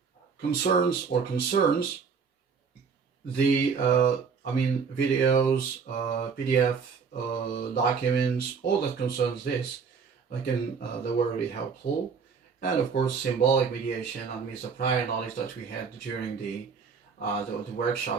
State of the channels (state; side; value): quieter; left; 5.8 dB